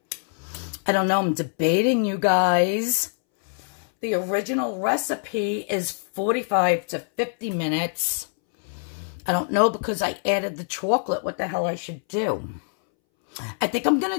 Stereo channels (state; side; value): silent; right; 62 dB below the other